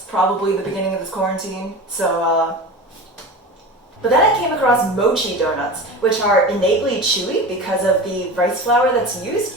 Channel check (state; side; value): normal; both; correlation 0.31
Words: probably the beginning of this quarantine, But then I came across mochi donuts, which are innately chewy because of the rice flour that's